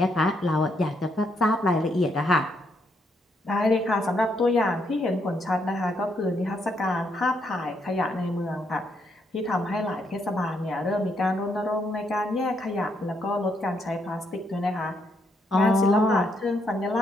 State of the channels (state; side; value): normal; both; correlation 0.75